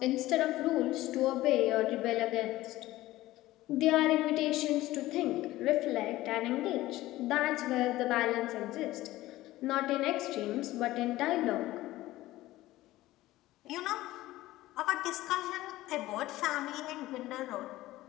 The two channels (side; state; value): right; quieter; 16.7 dB